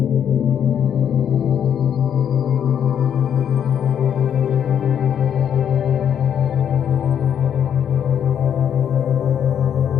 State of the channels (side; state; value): right; quieter; 8.8 dB